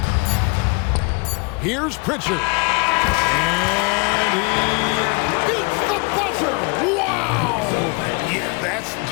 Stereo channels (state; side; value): quieter; right; 30.7 dB